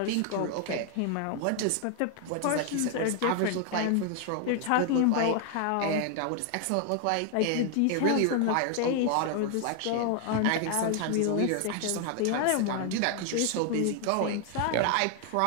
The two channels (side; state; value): both; different; correlation 0.00